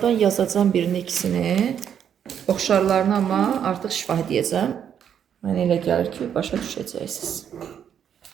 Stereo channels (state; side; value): quieter; left; 8.7 dB